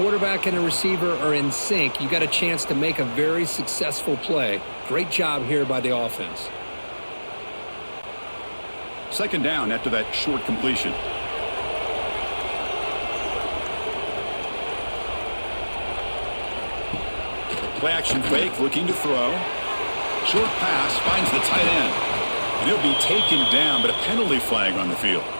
and a receiver are in sync, you got a chance to make a very successful play. Great job here by the offense. Second down after that short completion. Play action fake, looking to throw. Short pass finds the tight end. And he'll be taken down, but a penalty flag on the field.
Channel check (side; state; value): both; inverted; correlation -1.00